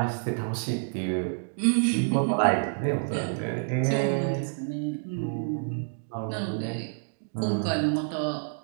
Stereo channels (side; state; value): left; silent; digital silence